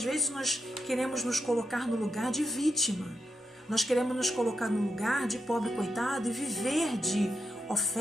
vezes nós queremos nos colocar no lugar de vítima, nós queremos nos colocar no lugar de pobre coitado e viver de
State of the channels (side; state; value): both; normal; correlation 0.86